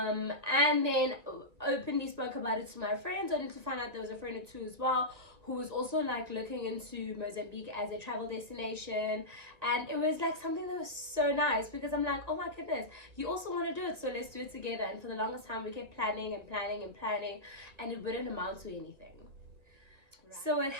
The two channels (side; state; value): left; late; 1.9 ms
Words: then openly spoke about it to my friends, only to find out there was a friend or two as well who was also like looking into Mozambique as a travel destination. And it was like something that was so nice, because I'm like, oh my goodness, you also want to do it, so let's do it together. And for the longest time we kept planning and planning and planning, and it wouldn't amount to anything. Right. So what